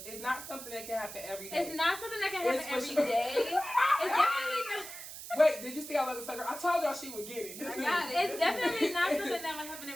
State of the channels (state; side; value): noise; right; hiss, 11 dB below the sound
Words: it's not something that can happen every day. It's not something that can happen every day. It's definitely not. Wait, did you see I love the sucker? I told y'all she would get it. I got it. It's definitely not something that would happen